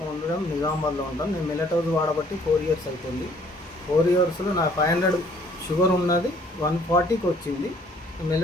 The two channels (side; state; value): both; normal; correlation 0.59